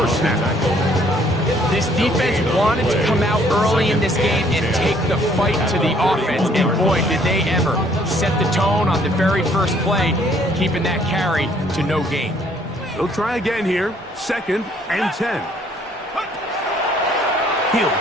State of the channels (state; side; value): normal; both; correlation 0.63